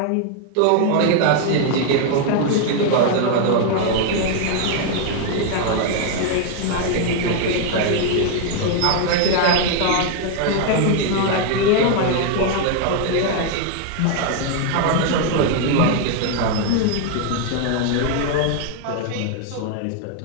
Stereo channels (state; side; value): different; both; correlation 0.00